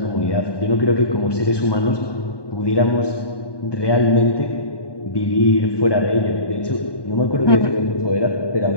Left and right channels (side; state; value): right; late; 1.2 ms